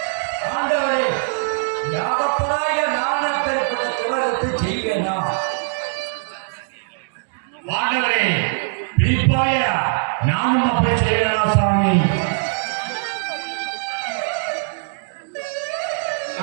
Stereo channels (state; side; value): silent; left; digital silence